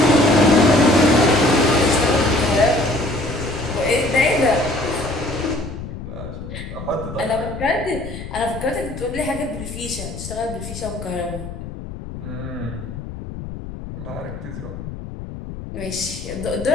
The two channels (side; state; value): left; noise; rumble, 10 dB below the sound